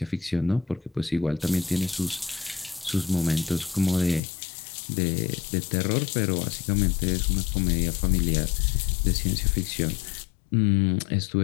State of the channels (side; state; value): right; drops out; at 4.2 s